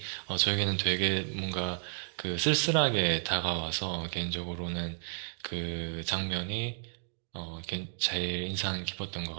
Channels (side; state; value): left; silent; digital silence